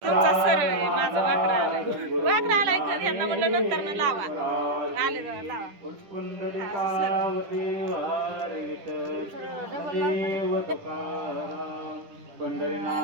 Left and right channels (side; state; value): left; late; 10 ms